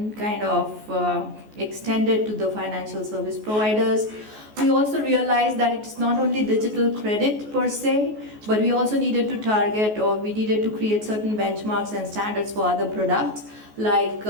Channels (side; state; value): left; late; 14 ms